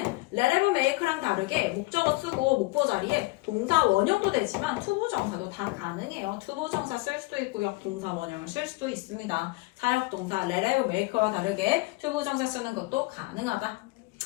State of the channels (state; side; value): quieter; right; 23.0 dB